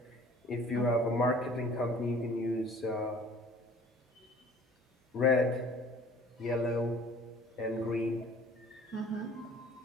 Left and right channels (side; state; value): both; normal; correlation 0.50